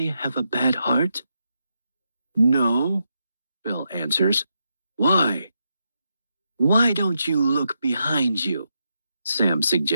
have a bad heart?" "No," Bill answers. "Why?" "Why don't you look behind you?" Sam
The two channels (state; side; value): inverted; both; correlation -0.84